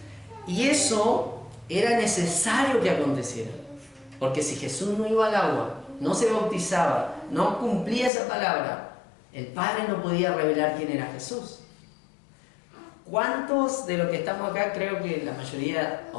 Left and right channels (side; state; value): right; drops out; at 8.1 s